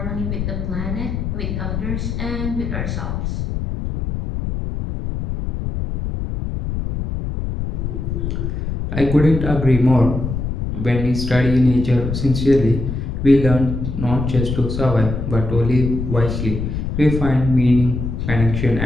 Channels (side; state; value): left; noise; rumble, 4 dB below the sound